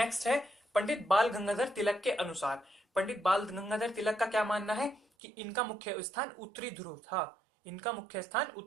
है पंडित बाल गंगाधर तिलक के अनुसार। पंडित बाल गंगाधर तिलक का क्या मानना है कि इनका मुख्य स्थान उत्तरी ध्रुव था। इनका मुख्य स्थान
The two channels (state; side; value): drops out; left; at 5.0 s